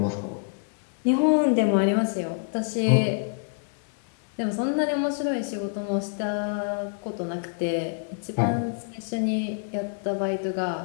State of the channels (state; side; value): silent; right; digital silence